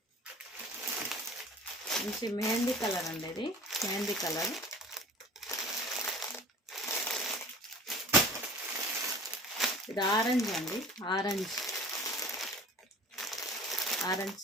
మంచి మెహందీ కలర్ అండి. ఇది మెహందీ కలర్. ఇది ఆరెంజ్ అండి. ఆరెంజ్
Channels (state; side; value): normal; both; correlation 0.42